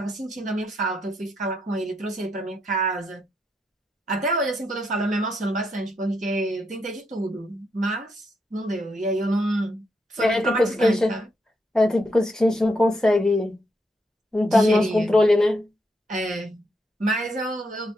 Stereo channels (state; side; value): normal; both; correlation 0.79